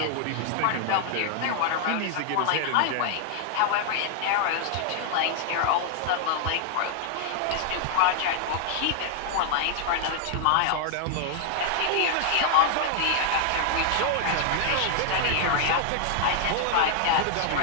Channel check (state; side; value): different; both; correlation -0.01